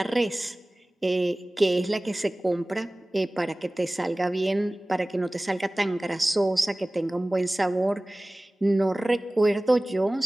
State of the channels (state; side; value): normal; both; correlation 0.98